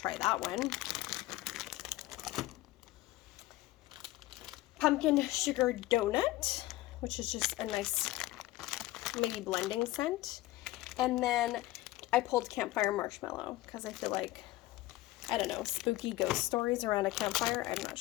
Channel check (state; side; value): quieter; right; 17.3 dB